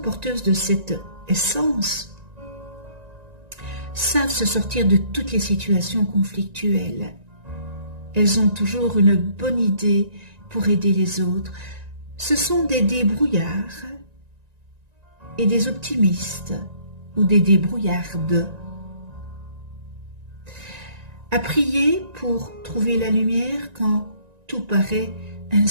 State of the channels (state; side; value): late; left; 1.9 ms